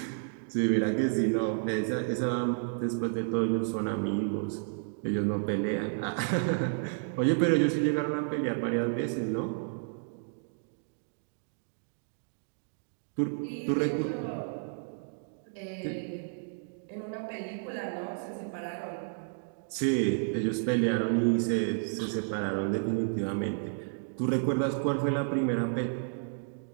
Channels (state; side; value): silent; left; digital silence